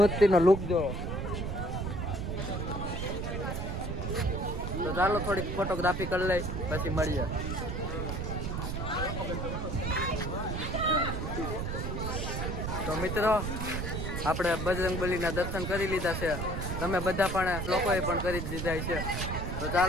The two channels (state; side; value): noise; right; rumble, 3 dB below the sound